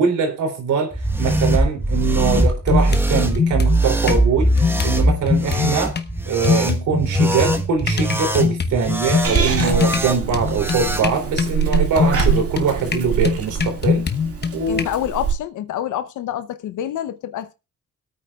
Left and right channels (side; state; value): both; normal; correlation 0.43